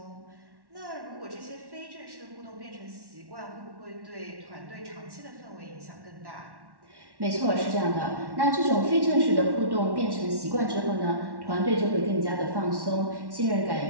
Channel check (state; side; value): late; left; 1.1 ms